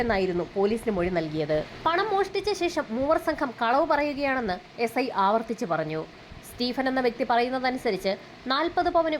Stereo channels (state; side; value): identical; both; correlation 1.00